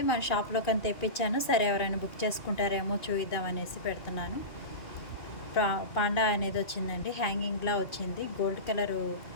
మన షాప్లో కానీ తెప్పించాను. సరే ఎవరైనా బుక్ చేసుకుంటారేమో చూద్దాం అనేసి పెడుతున్నాను. పాండా అనేది వచ్చిందండి, హ్యాంగింగ్లా వచ్చింది. గోల్డ్ కలరు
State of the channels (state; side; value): late; right; 2.4 ms